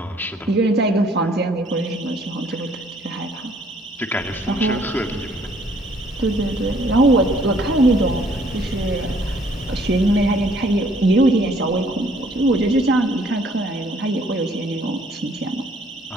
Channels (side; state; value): both; normal; correlation 0.62